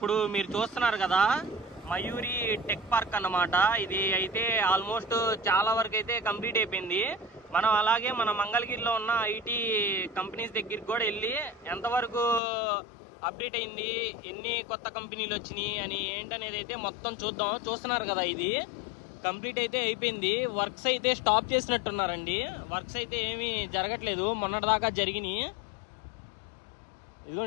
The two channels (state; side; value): drops out; right; at 12.4 s